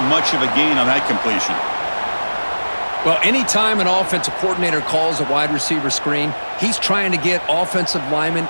much of a gain on that completion. Well, anytime an offensive coordinator calls a wide receiver screen, he's trying to get offensive linemen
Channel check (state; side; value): inverted; both; correlation -1.00